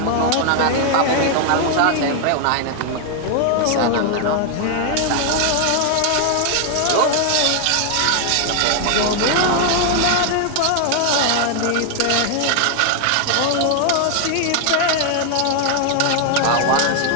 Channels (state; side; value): different; both; correlation 0.00